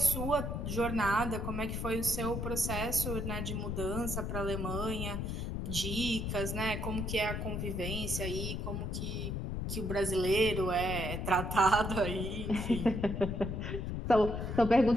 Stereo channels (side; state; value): left; noise; rumble, 3 dB below the sound